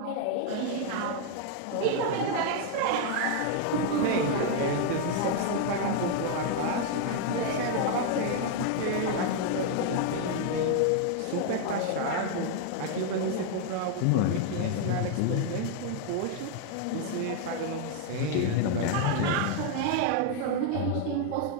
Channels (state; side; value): different; both; correlation 0.00